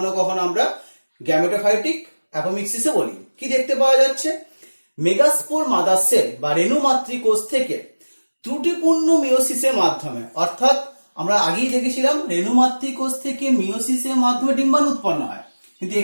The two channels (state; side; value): inverted; both; correlation -1.00